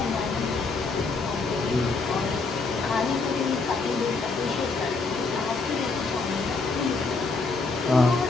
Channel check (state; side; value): quieter; right; 4.0 dB